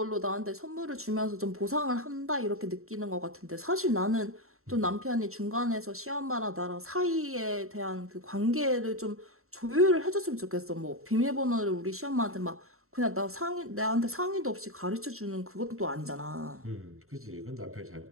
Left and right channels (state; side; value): late; left; 0.63 ms